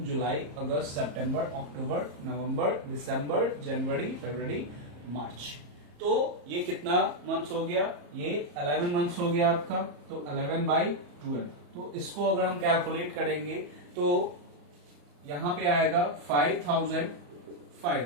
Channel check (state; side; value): late; left; 34 ms